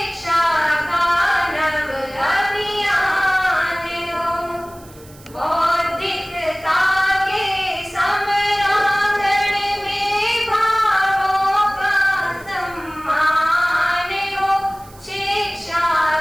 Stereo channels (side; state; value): right; noise; hiss, 24 dB below the sound